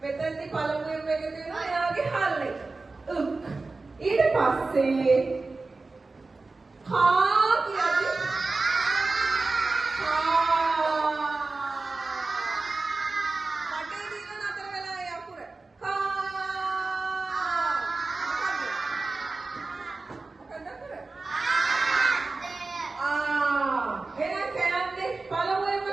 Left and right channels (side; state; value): left; quieter; 3.6 dB